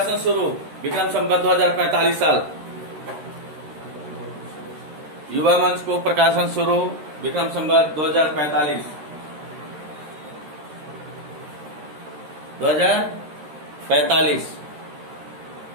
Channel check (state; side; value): late; left; 13 ms